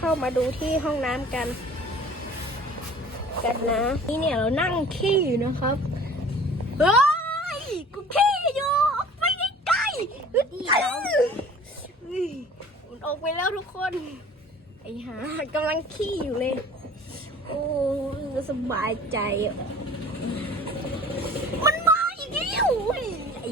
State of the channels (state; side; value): normal; both; correlation 0.46